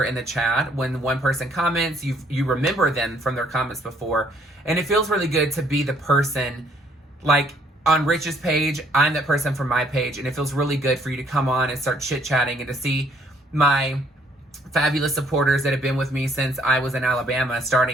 in the chat. When one person comments, you remember them from their comments before. And it feels really good to be the person, like on Rich's page, I'm that person from my page. And it feels really good for you to come on and start chit-chatting and to see my fabulous supporters that have been with me since I was in Alabama,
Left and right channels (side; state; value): both; normal; correlation 0.65